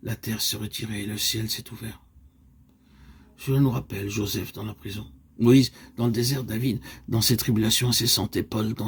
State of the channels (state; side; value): identical; both; correlation 1.00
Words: la terre s'est retirée et le ciel s'est ouvert. Cela nous rappelle Joseph dans la prison, Moïse dans le désert, David dans ses tribulations incessantes et Paul